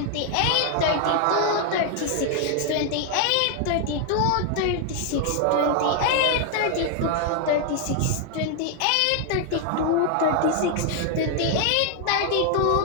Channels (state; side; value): different; both; correlation 0.00